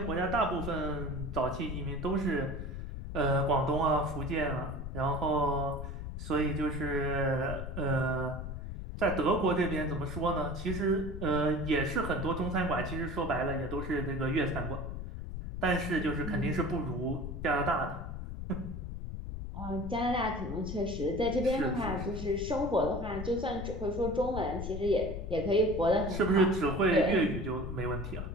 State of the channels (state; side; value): noise; left; rumble, 6 dB below the sound